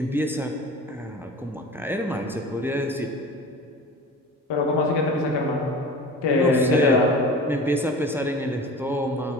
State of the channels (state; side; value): normal; both; correlation 0.37